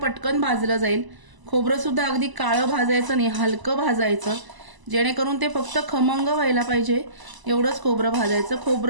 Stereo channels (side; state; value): left; late; 1.0 ms